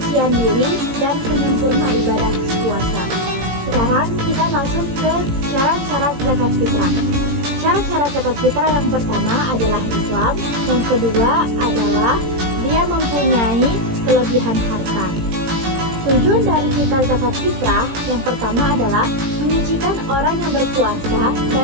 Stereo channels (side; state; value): left; late; 17 ms